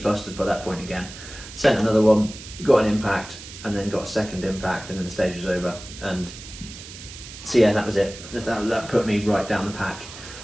by that point again. Sent another one, got an impact, and then got a second impact, and then the stage was over. And so yeah, that was it. That put me right down the pack.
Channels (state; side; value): noise; right; hiss, 14 dB below the sound